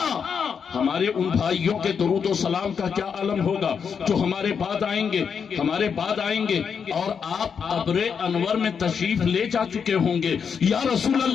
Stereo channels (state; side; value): quieter; right; 6.6 dB